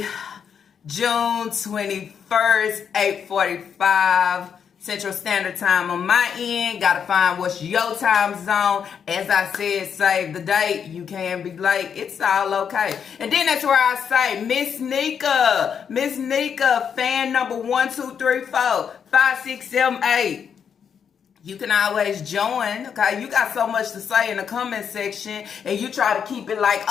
June 21st, 8:45. Central Standard Time on my end. Gotta find what's your time zone. As I said, save the date. You can be late. It's all okay. And then that's where I say, Miss Nika, fan number 1, 2, 3, 4, 5, 6, 7, 8. You can always join, okay? You got so much to say in the comment section, and you try to keep it like,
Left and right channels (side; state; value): right; quieter; 7.4 dB